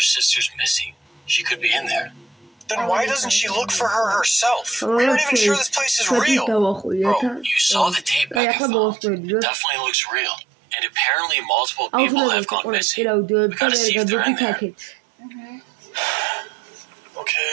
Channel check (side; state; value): left; drops out; at 8.4 s